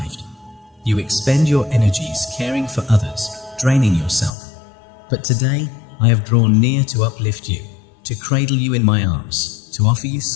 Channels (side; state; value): right; drops out; at 4.3 s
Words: You expend your energies caring for others, draining yourself. But today, I have drawn near to uplift you, to cradle you in my arms, to offer you